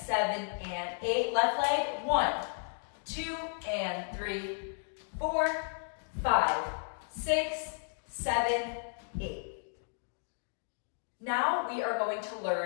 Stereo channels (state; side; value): silent; right; digital silence